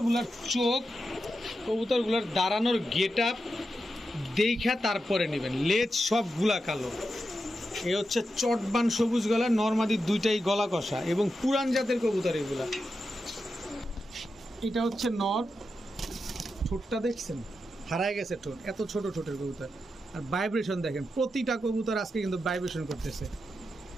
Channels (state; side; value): normal; both; correlation 0.88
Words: চোখ, কবুতরগুলার দাঁড়ানোর গেট আপ দেখা তারপরে নেবেন। লেজ সবগুলা কালো। এ হচ্ছে চটবান সবুজ গলা, নরমাদি দুইটাই গলা কষা এবং পুরান জাতের কবুতর এগুলা। এটা হচ্ছে নর, ঠোঁটটা দেখছেন হারায় গেছে ঠোঁট, এত ছোট ঠোঁটের কবুতর। আর ভাইব্রেশন দেখেন, প্রতিটা কবুতর আজকে কিন্তু ভাইব্রেশন করতেছে।